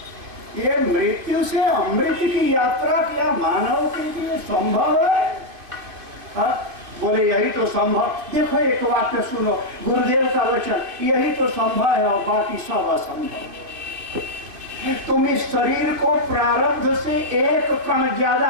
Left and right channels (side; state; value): left; late; 2.5 ms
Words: ये मृत्यु से अमृत की यात्रा क्या मानव के लिए संभव है? हा? बोले यही तो संभव। देखो एक वाक्य सुनो, गुरुदेव का वचन, यही तो संभव है और बाकी सब असंभव। तुम इस शरीर को प्रारब्ध से एक कण